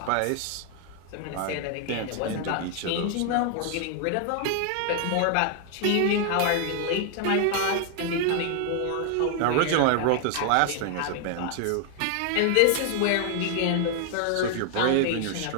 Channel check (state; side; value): different; both; correlation 0.00